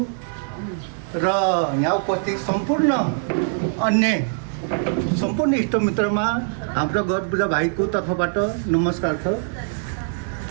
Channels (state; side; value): silent; left; digital silence